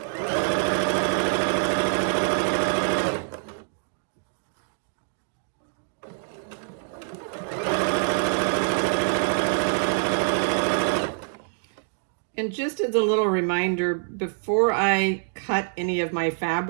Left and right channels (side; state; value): left; silent; digital silence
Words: And just as a little reminder, before I cut any of my